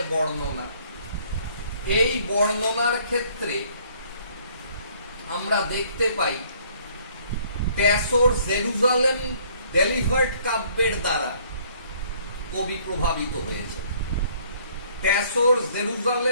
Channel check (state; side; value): inverted; both; correlation -0.60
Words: বর্ণনা, এই বর্ণনার ক্ষেত্রে আমরা দেখতে পাই ট্যাসোর জেরুজালেম ডেলিভার্ড কাব্যের দ্বারা কবি প্রভাবিত হয়েছে। ট্যাসোর